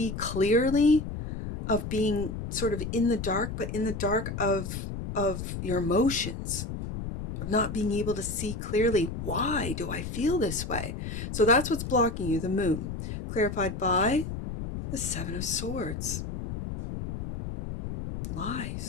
clearly, of being sort of in the dark, but in the dark of your emotions, of not being able to see clearly, why do I feel this way? So that's what's blocking you, the Moon, clarified by the Seven of Swords.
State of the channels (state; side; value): noise; left; rumble, 6 dB below the sound